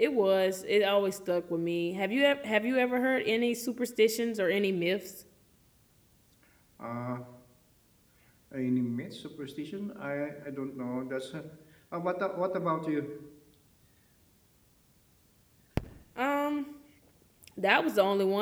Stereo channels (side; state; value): both; identical; correlation 1.00